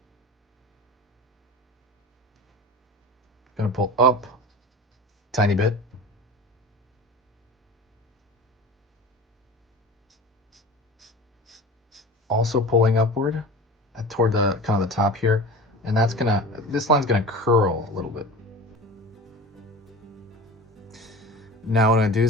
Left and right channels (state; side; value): normal; both; correlation 0.35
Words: Gonna pull up tiny bit. Also pulling upward toward the kind of the top here, and this line's gonna curl a little bit. Now what I'm gonna do